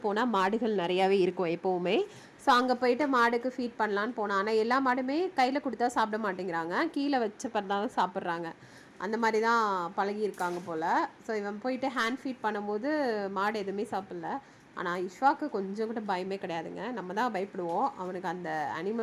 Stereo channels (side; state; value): both; identical; correlation 1.00